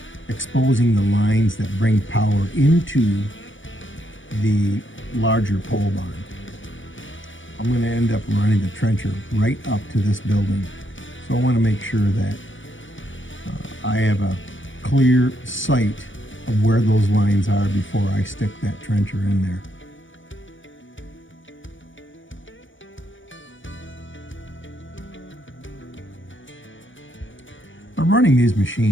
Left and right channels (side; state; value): right; late; 0.56 ms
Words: exposing the lines that bring power into the larger pole barn. I'm going to end up running the trencher right up to this building. So I want to make sure that I have a clear sight of where those lines are before I stick that trencher in there. Now running these